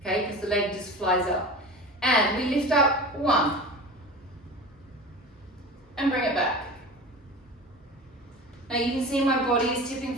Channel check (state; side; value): normal; both; correlation 0.33